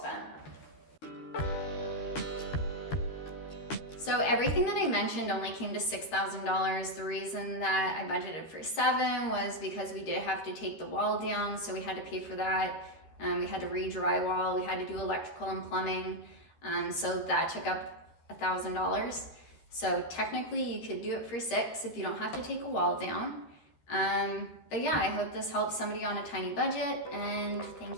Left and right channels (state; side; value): late; right; 13 ms